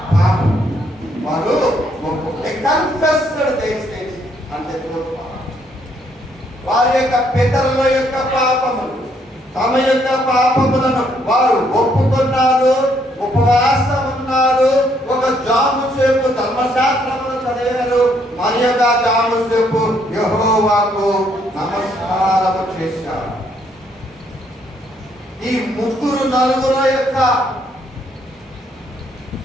పాపం వారు అంటే వారి యొక్క పితరుల యొక్క పాపములు, తమ యొక్క పాపములను వారు ఒప్పుకున్నారు, ఉపవాసం ఉన్నారు. ఒక జాము సేపు ధర్మశాస్త్రమును చదివారు, మరి యొక్క జాము సేపు యెహోవాకు నమస్కారము చేశారు. ఈ ముగ్గురు నలుగురు యొక్క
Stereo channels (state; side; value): normal; both; correlation 0.70